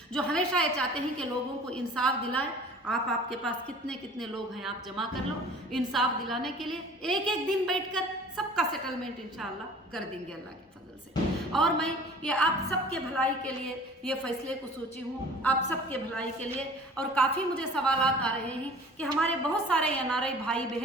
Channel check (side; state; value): both; normal; correlation 0.46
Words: जो हमेशा ये चाहते हैं कि लोगों को इंसाफ दिलाएं आप आपके पास कितने कितने लोग हैं आप जमा कर लो, इंसाफ दिलाने के लिए एक एक दिन बैठकर सबका सेटलमेंट इंशाअल्लाह कर देंगे अल्लाह के फजल से। और मैं ये आप सबके भलाई के लिए ये फैसले को सोची हूँ, आप सबके भलाई के लिए। और काफ़ी मुझे सवालात आ रहे हैं कि हमारे बहुत सारे एनआरआई भाई